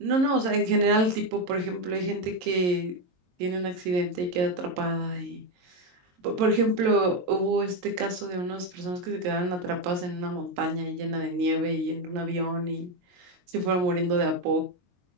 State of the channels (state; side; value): late; left; 22 ms